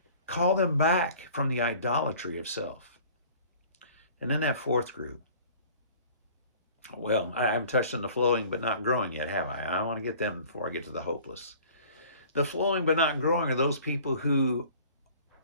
Call them back from the idolatry of self. And then that fourth group. Well, I haven't touched on the flowing but not growing yet, have I? I want to get them before I get to the hopeless. The flowing but not growing are those people who,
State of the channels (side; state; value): both; inverted; correlation -0.48